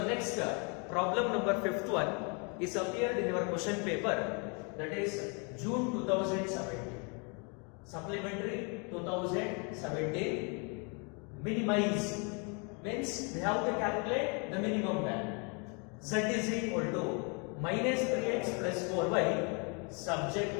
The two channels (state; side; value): quieter; right; 34.6 dB